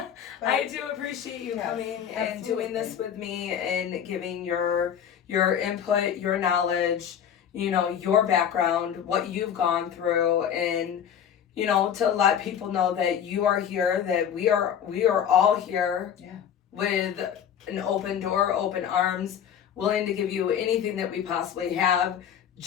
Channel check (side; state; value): right; quieter; 8.8 dB